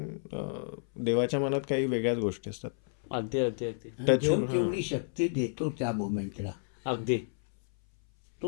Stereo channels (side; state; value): right; silent; 57 dB below the other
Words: देवाच्या मनात काही वेगळ्याच गोष्टी असतात. अगदी अगदी अगदी Touch- देव तेवढी शक्ती देतो त्या मोमेंटला, अगदी